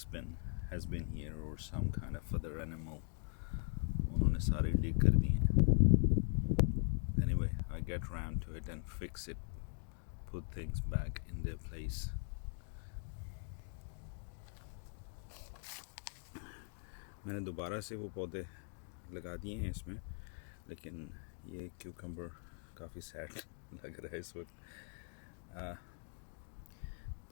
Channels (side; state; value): right; silent; 50 dB below the other